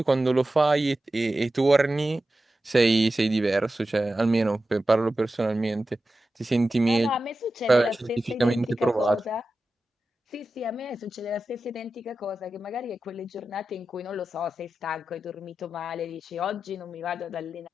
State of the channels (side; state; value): both; normal; correlation 0.93